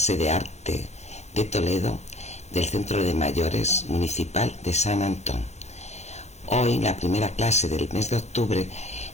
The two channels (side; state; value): right; late; 0.32 ms